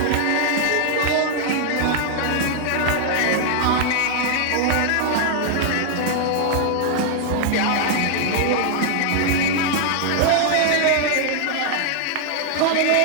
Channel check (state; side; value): different; both; correlation 0.00